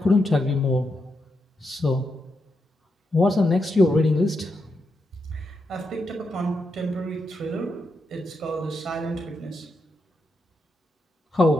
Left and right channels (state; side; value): normal; both; correlation 0.84